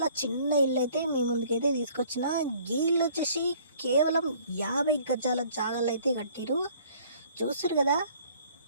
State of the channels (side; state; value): both; inverted; correlation -0.56